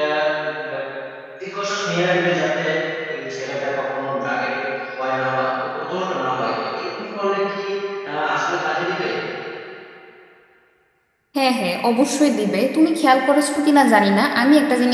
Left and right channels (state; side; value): identical; both; correlation 1.00